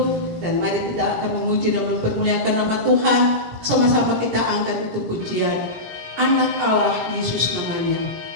dan mari kita akan memuji dan mempermuliakan nama Tuhan. Sama-sama kita angkat itu pujian. Anak Allah Yesus namanya.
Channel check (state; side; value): late; left; 17 ms